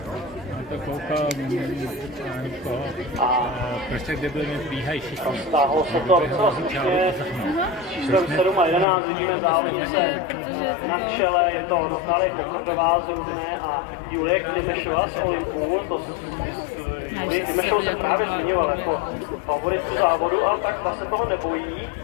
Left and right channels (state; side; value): drops out; right; at 8.8 s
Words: To koukám, prostě kde byli bíhají všichni. Stáhlo se to docela slušně. Číslem 7 a 11 vidíme závodnice na čele. Je to Natálie Pokrdová z Rudné a Julie Klimešová z Olympu. Julie Klimešovou se právě zmiňovala jako favoritku závodu, ale tak ta se toho nebojí.